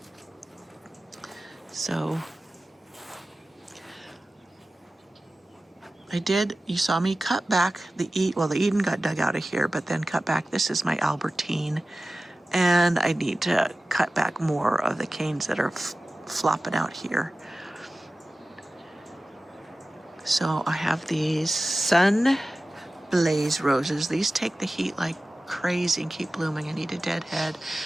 So, you saw me cut back the Eden got dug out of here, but then cut back. This is my Albertine, and I need to cut back more of the canes that are flopping out here. So I have these Sun Blaze roses. These take the heat like crazy and keep blooming. I need a deadhead.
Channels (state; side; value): normal; both; correlation 0.96